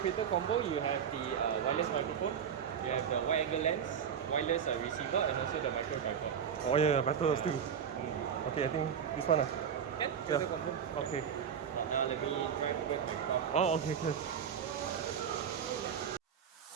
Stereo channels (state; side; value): quieter; left; 7.8 dB